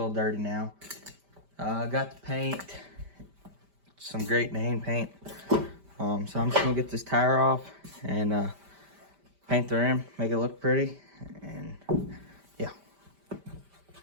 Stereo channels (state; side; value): late; left; 5.1 ms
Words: little dirty now. I got the paint, some great name paint. So I'm just going to get this tire off and paint the rim, make it look pretty, and yeah.